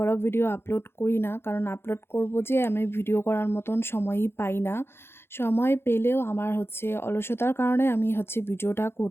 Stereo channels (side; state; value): right; late; 0.11 ms